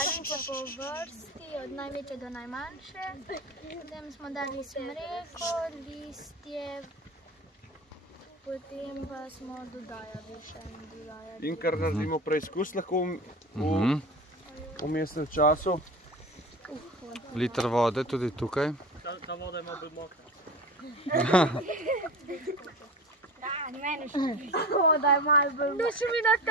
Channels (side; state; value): both; normal; correlation 0.32